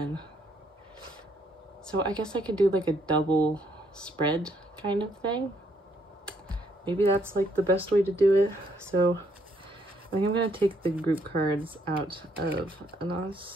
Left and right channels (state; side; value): normal; both; correlation 0.70